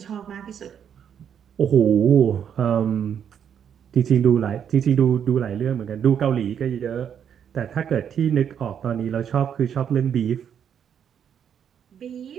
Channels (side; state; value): left; quieter; 8.4 dB